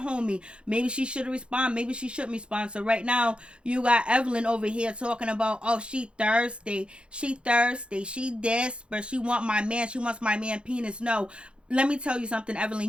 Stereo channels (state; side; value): late; left; 0.056 ms